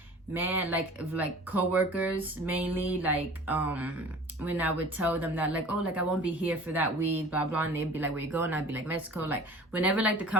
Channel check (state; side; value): normal; both; correlation 0.44